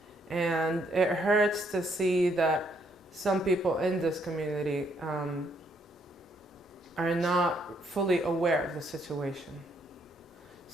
And it hurts to see that some people in this community are not fully aware of the situation.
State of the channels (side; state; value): both; normal; correlation 0.71